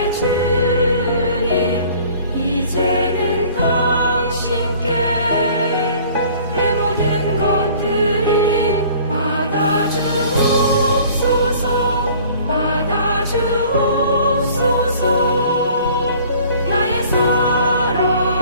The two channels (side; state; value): both; inverted; correlation -0.51